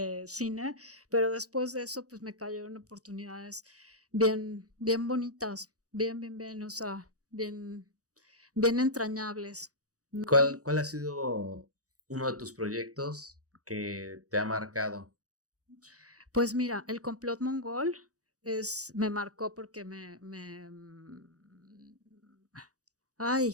cine, pero después de eso pues me cayeron oportunidades bien, bien bonitas. Bien, o sea, bien entrañables. ¿No? ¿Cuál ha sido uno de tus proyectos que te ha marcado? Pues mira, El complot mongol me marcó porque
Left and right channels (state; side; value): late; left; 0.66 ms